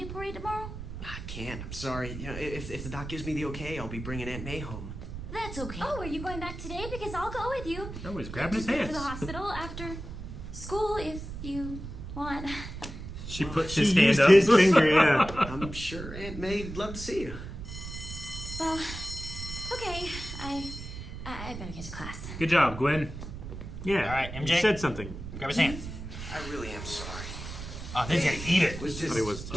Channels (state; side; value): noise; right; rumble, 9 dB below the sound